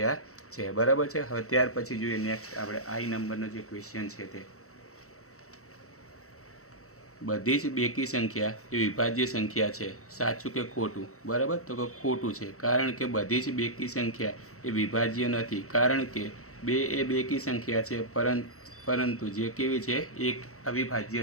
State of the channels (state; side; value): late; right; 0.64 ms